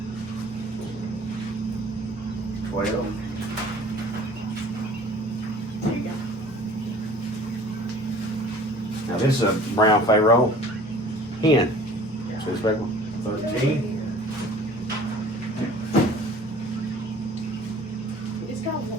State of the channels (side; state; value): both; normal; correlation 0.48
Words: 12. There you go. Now this is a brown Pharaoh hen. See the speckle? 13. It's got